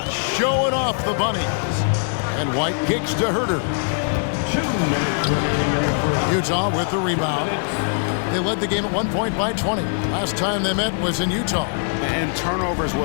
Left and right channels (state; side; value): silent; right; digital silence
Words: showing off the bunnies. And White kicks to Herter. Utah with the rebound. They led the game at 1 point by 20. Last time they met was in Utah. And turnovers